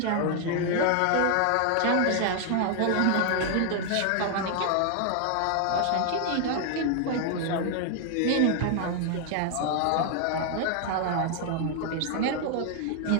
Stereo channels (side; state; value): both; different; correlation 0.00